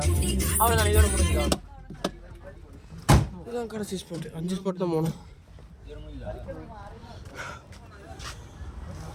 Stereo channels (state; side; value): identical; both; correlation 1.00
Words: அவ்வளோதான். இதோட முடிஞ்சுதான். இதுதான் கடைசி ஸ்பாட். 5 ஸ்பாட் தான் போகணும்.